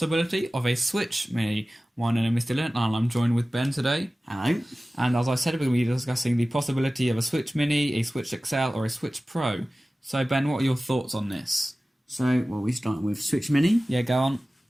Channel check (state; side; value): normal; both; correlation 0.97